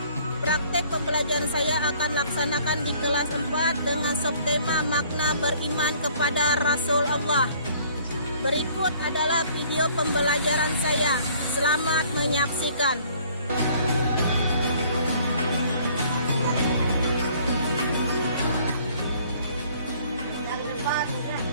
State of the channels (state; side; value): inverted; both; correlation -0.57